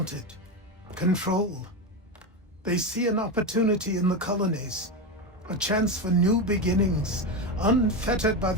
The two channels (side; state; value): both; normal; correlation 0.15